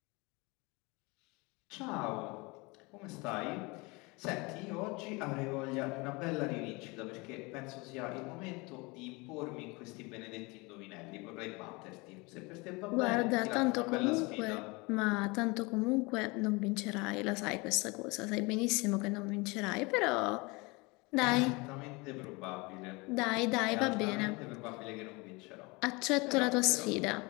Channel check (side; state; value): right; quieter; 26.2 dB